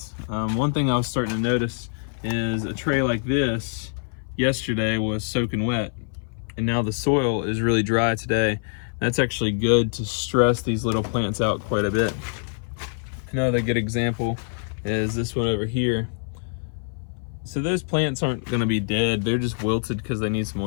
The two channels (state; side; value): silent; right; 58 dB below the other